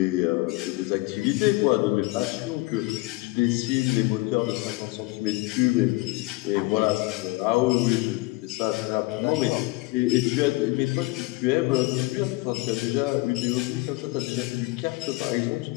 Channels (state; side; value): quieter; right; 21.7 dB